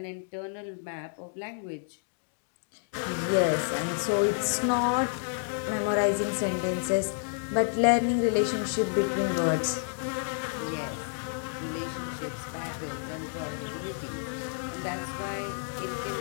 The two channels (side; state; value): right; silent; digital silence